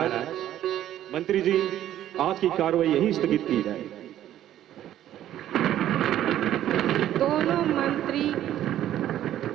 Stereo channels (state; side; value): quieter; left; 12.2 dB